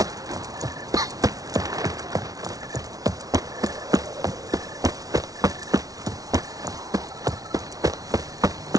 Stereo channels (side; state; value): left; late; 0.18 ms